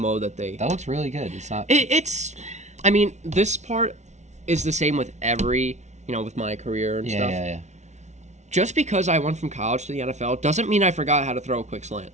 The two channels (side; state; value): left; late; 0.33 ms